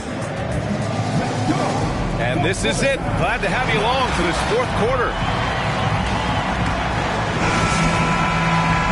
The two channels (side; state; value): both; identical; correlation 1.00